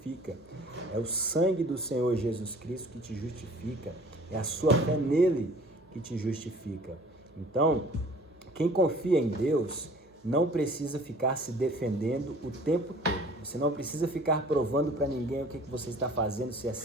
É o sangue do Senhor Jesus Cristo que te justifica. É a sua fé nele que te justifica. Então, quem confia em Deus não precisa ficar se defendendo o tempo todo. Você não precisa ficar provando para ninguém o que você está fazendo, se é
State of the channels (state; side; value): normal; both; correlation 0.50